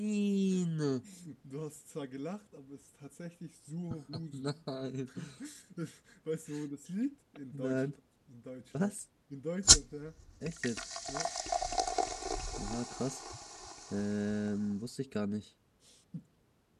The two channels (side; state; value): both; identical; correlation 1.00